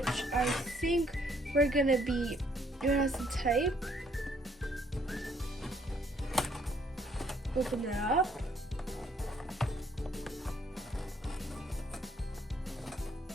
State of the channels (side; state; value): both; normal; correlation 0.66